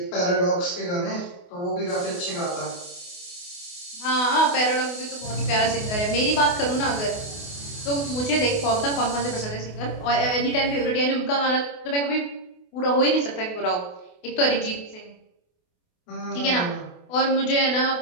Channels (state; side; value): late; right; 28 ms